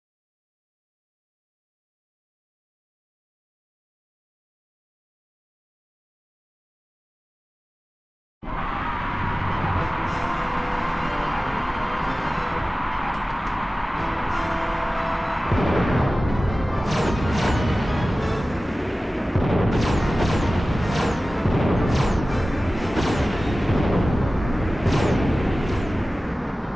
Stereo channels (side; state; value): both; normal; correlation 0.96